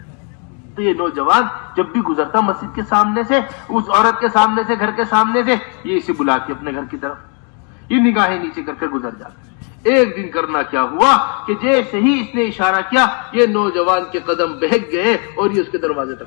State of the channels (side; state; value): right; quieter; 38.7 dB